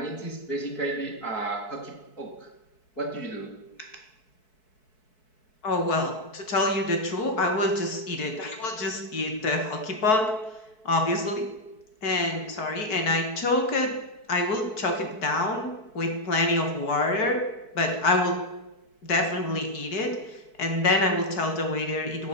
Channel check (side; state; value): right; late; 4.6 ms